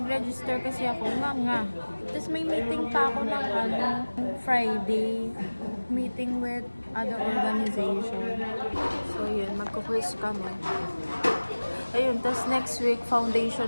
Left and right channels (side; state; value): both; inverted; correlation -1.00